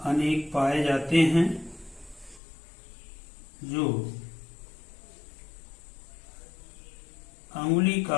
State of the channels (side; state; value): right; drops out; at 2.4 s